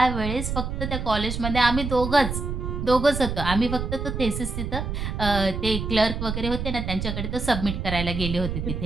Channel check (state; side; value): noise; right; rumble, 4 dB below the sound